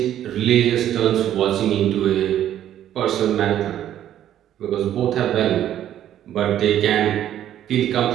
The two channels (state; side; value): quieter; left; 11.4 dB